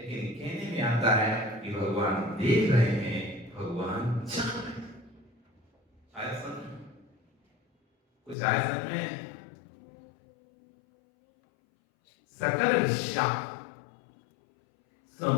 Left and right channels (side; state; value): right; drops out; at 8.3 s